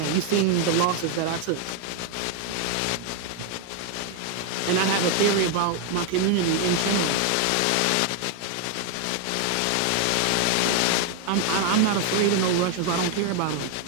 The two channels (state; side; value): different; both; correlation 0.01